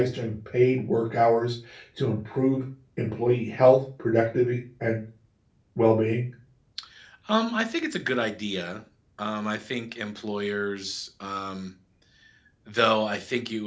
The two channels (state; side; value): identical; both; correlation 1.00